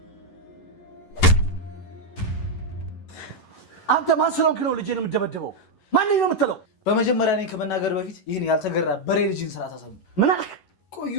አንተ ማን ስለሆንክ ነው ልጄን የምትደበድበው? ማን ነው የምትለው? በመጀመሪያ እኔን ከመናገር በፊት ይህን ያልተገራ በሬ ልጅን ስራ ታሰሙ። ምን አልክ? ቆዩ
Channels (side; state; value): right; late; 11 ms